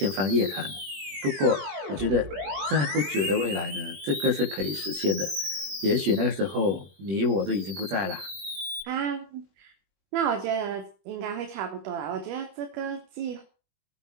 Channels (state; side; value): late; left; 21 ms